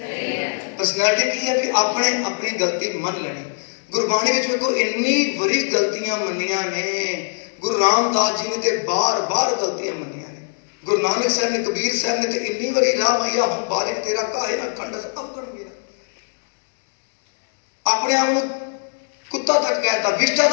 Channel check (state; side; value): silent; right; digital silence